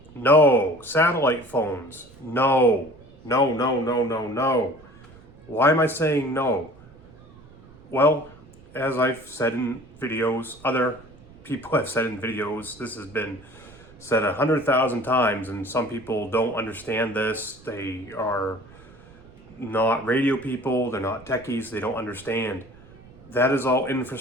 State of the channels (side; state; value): right; noise; rumble, 23 dB below the sound